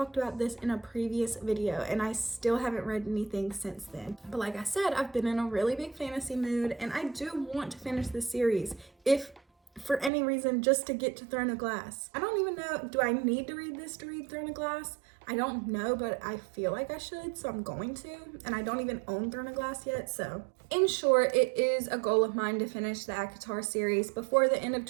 about this in a previous video and I still haven't read anything since then. But like I said, I've been in a really big fantasy mood and I do want to finish this series. If for any reason, just to get to Throne of Glass. I don't even know, do I need to read this to read Throne of Glass? I don't know, but I feel like I should, so I'm going to. And I don't even own Throne of Glass yet, so. In short, it is a goal of mine to finish the ACOTAR series before the end of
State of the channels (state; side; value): drops out; left; at 10.1 s